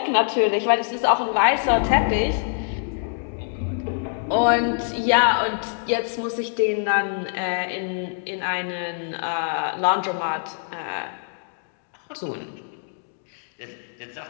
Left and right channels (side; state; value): right; silent; digital silence